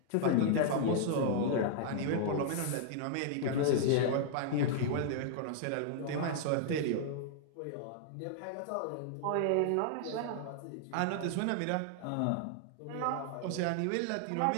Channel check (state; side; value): different; both; correlation -0.01